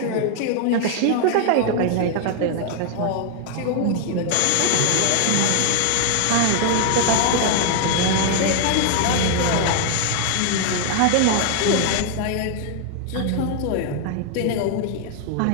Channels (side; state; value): both; different; correlation 0.00